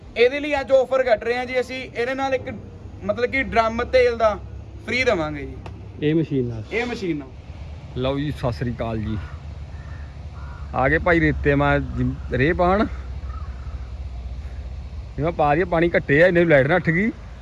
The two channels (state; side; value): identical; both; correlation 1.00